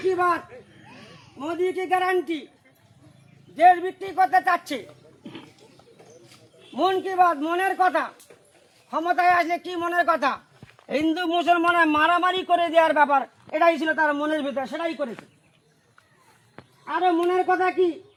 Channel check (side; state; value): both; identical; correlation 1.00